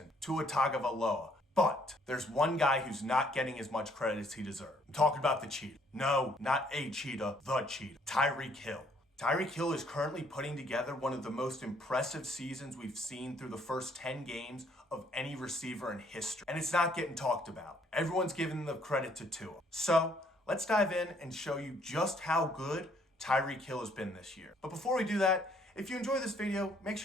Tua Tagovailoa. But there's one guy who's not getting as much credit as he deserves. I'm talking about the cheetah. No, not a cheetah, the cheetah. Tyreek Hill. Tyreek Hill is currently putting together one of the most impressive seasons we've seen through the first 10 games of any receiver in history. And it's not getting talked about. Everyone's giving the credit to Tua. So let's dive in and show you just how good Tyreek Hill has been this year. But before we do that, if you enjoy this video, make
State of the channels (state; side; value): normal; both; correlation 0.65